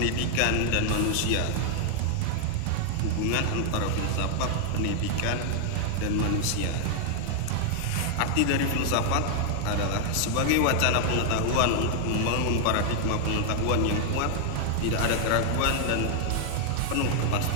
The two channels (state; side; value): different; both; correlation 0.00